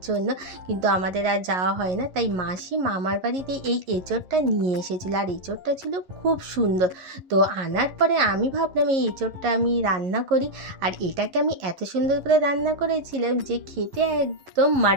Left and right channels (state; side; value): late; left; 11 ms